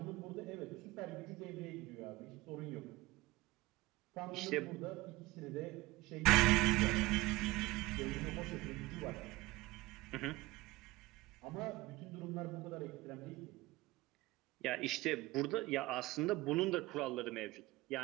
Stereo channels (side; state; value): left; quieter; 20.4 dB